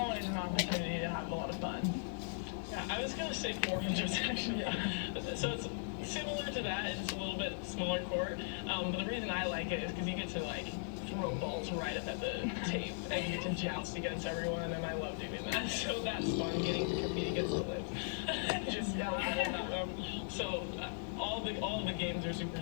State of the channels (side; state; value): right; silent; digital silence